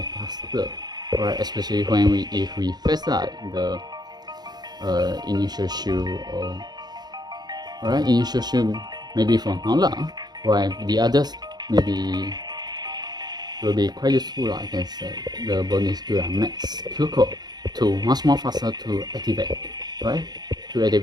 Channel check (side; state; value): left; late; 0.20 ms